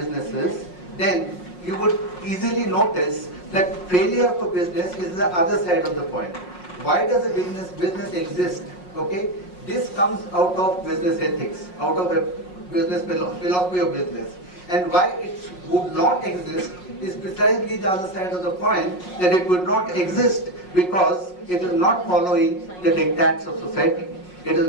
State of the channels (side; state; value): right; late; 5.5 ms